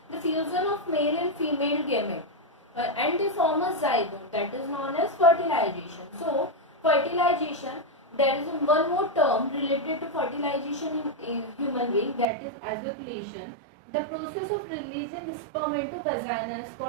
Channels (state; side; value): drops out; left; at 12.2 s